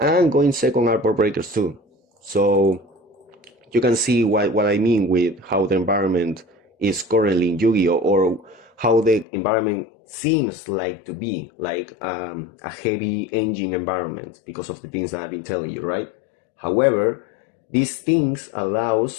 going second are board breakers too. So you can see what I mean with how the environment is currently in Yu-Gi-Oh, or how the environment seems like to be like a heavy engine environment because of the things that I've been telling you, right? However, these things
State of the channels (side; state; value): right; drops out; at 9.2 s